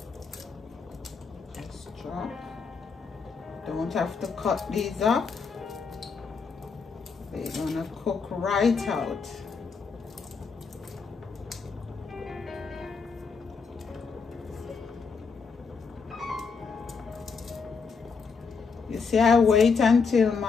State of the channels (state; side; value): quieter; right; 5.2 dB